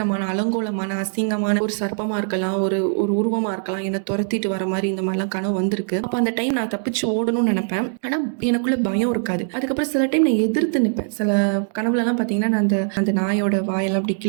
அலங்கோலமான அசிங்கமான ஒரு சர்ப்பமா இருக்கலாம், ஒரு உருவமா இருக்கலாம், என்னை துரத்திட்டு வர மாதிரி இந்த மாதிரிலாம் கனவு வந்திருக்கு. அப்ப அந்த டைம் நான் தப்பிச்சு ஓடணும்னு நினைப்பேன், ஆனா எனக்குள்ள பயம் இருக்காது. அதுக்கப்புறம் சில டைம் நான் எதிர்த்து நிற்பேன். சில கனவுல எல்லாம் பாத்தீங்கன்னா நான் அந்த நாயோட வாயெல்லாம் அப்படி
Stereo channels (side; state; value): left; silent; digital silence